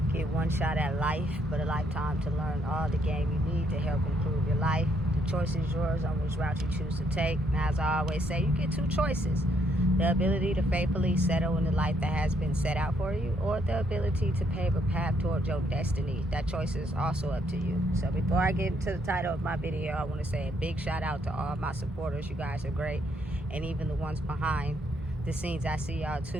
Get one shot at life, but a lifetime to learn all the game you need to help improve your life. The choice is yours on which route you choose to take. Now, as I always say, you get two choices. The ability to faithfully settle in the life that has been set out for you, or the ability to pave a path towards your destiny. That choice is also up to you. So before I get into the title of my video, I want to say a big shout out to all my supporters. You guys are great. And even the ones behind the scenes, I see y'all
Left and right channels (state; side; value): normal; both; correlation 0.72